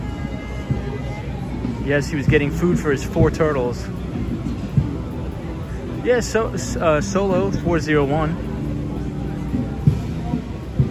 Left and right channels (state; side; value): identical; both; correlation 1.00